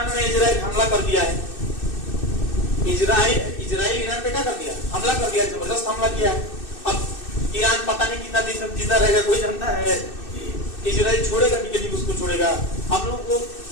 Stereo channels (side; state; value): right; late; 2.6 ms